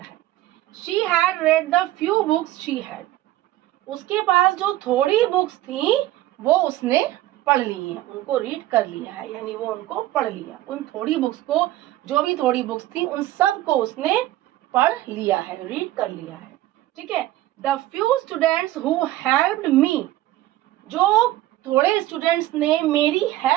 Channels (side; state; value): left; quieter; 15.5 dB